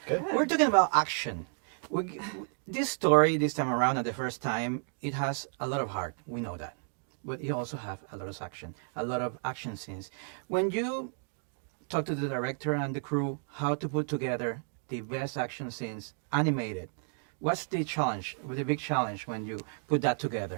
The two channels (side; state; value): left; silent; 56 dB below the other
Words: Good. We're talking about action. This story this time around at the first time it has a lot of heart, we know that, but it also have a lot of action, a lot of action scenes. When you talk to the director and the crew how to put together the best action scenes animated, what's the challenge, the big challenge when you put that